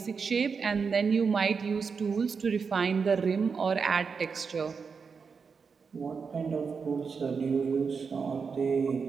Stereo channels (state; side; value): quieter; left; 5.5 dB